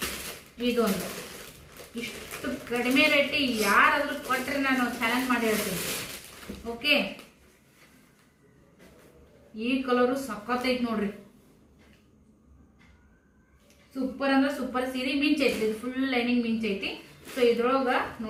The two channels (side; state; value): both; identical; correlation 1.00